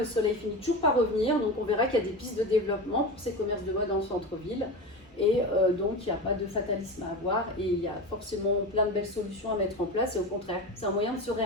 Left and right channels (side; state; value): both; normal; correlation 0.25